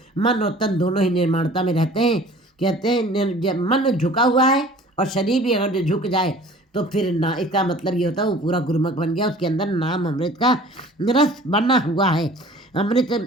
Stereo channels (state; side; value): normal; both; correlation 0.47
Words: मन और तन दोनों ही निर्माणता में रहते हैं। कहते हैं जब मन झुका हुआ है और शरीर भी अगर झुक जाए तो फिर ना, इसका मतलब ये होता है वो पूरा गुरुमुख बन गया, उसके अंदर नाम अमृत का रस बना हुआ है। अमृत